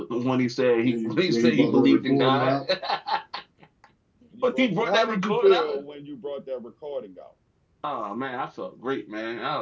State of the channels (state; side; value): identical; both; correlation 1.00